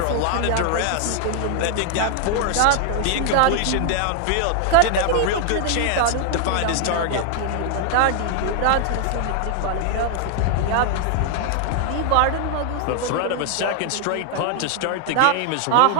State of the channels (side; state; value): both; different; correlation 0.00